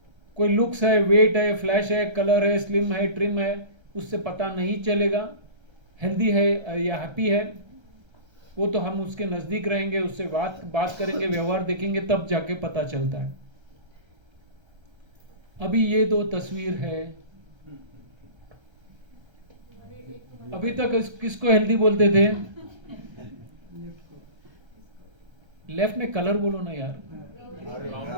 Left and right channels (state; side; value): late; left; 1.3 ms